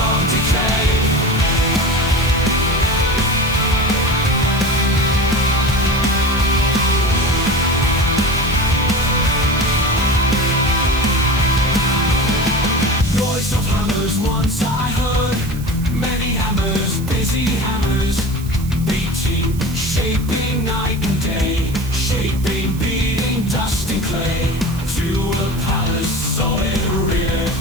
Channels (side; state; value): right; noise; hiss, 18 dB below the sound